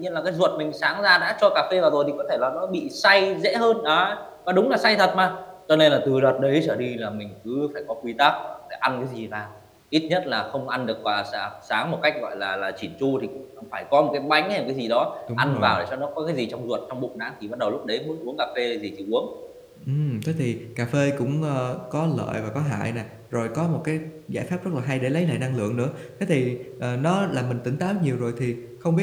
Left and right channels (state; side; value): identical; both; correlation 1.00